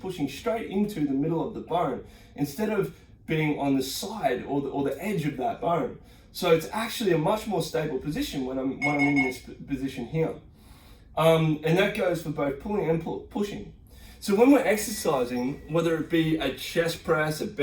straight into the middle of the bone instead of being on the side or the edge of that bone. So it's actually a much more stable position when I'm in this position here. And that goes for both pulling and pushing. So when we're exercising, whether it be a chest press, a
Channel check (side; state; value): both; identical; correlation 1.00